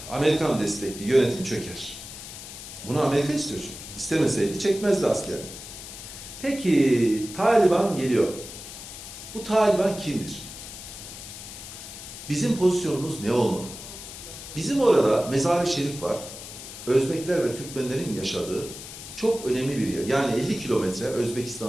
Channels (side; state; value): left; noise; hiss, 12 dB below the sound